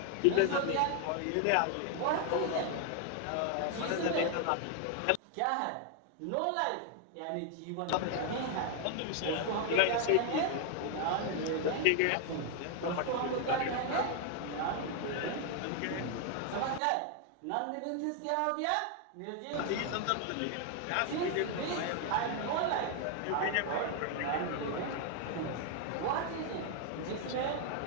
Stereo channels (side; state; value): both; different; correlation 0.00